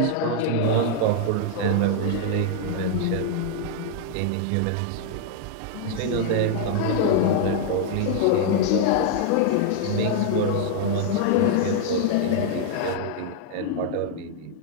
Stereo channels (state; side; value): different; both; correlation -0.01